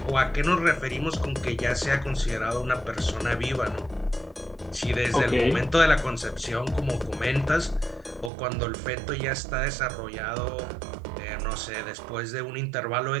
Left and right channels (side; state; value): left; drops out; at 8.3 s